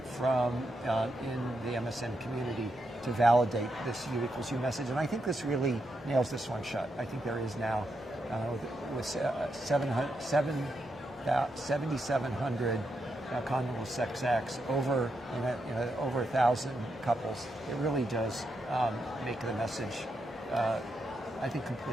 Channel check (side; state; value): both; normal; correlation 0.83